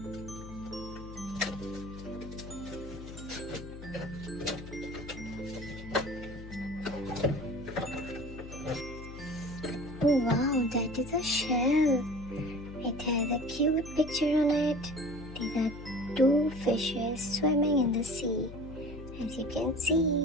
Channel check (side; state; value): left; noise; hum, 13 dB below the sound